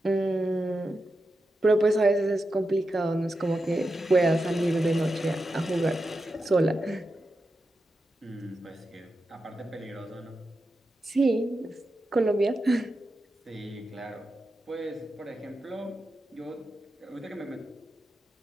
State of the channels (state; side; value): normal; both; correlation 0.89